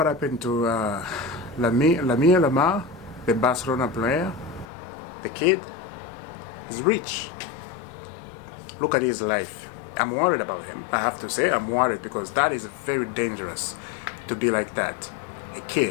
happened to Lamine Yamal, the Barcelona player. The kid is rich. Look at his life. I'm worried about him. I have to say I'm worried because that is very dangerous to be like that. A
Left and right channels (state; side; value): drops out; right; at 4.7 s